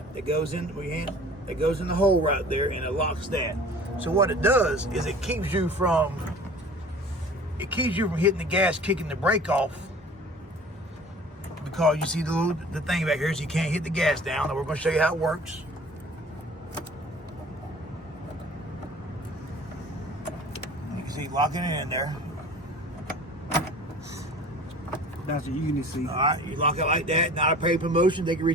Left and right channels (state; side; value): normal; both; correlation 0.45